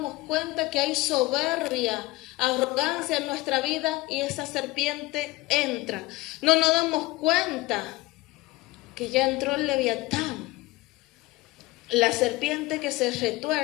cuenta que hay soberbia, arrogancia en nuestra vida y esa serpiente entra. No nos damos cuenta que ya entró el Leviatán, la serpiente que se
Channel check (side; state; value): right; quieter; 20.1 dB